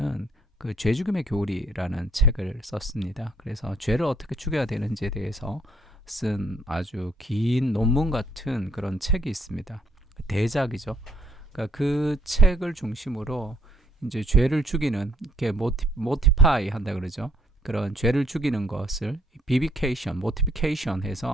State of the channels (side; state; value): both; normal; correlation 0.66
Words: 그 죄 죽임의 교리라는 책을 썼습니다. 그래서 죄를 어떻게 죽여야 되는지에 대해서 쓴 아주 긴 논문 같은 그런 책이 있습니다. 대작이죠. 그러니까 그 책을 중심으로 이제 죄를 죽이는, 이렇게 모티파이 한다 그러죠. 그런 죄를 죽이는 것을 비비케이션, 모티피케이션